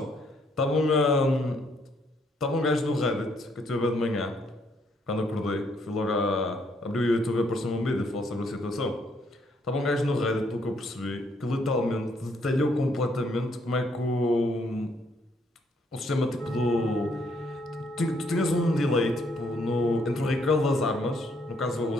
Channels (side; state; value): both; normal; correlation 0.70